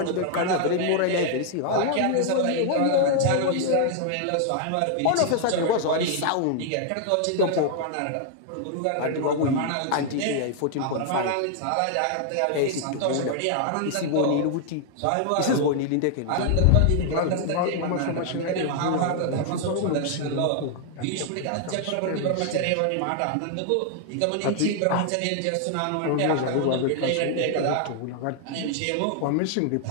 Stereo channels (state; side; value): different; both; correlation 0.00